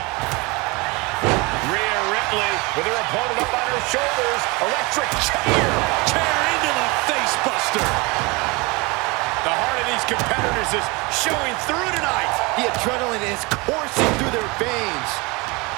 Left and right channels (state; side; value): quieter; left; 26.2 dB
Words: Rhea Ripley with her opponent up on her shoulders. Electric chair. Chair into the face buster. The heart of these competitors is showing through tonight. The adrenaline is coursing through their veins.